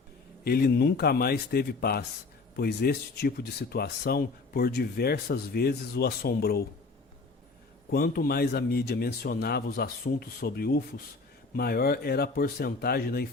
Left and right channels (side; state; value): right; quieter; 3.9 dB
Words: Ele nunca mais teve paz, pois este tipo de situação por diversas vezes o assombrou. Quanto mais a mídia mencionava os assuntos sobre UFOs, maior era a porcentagem da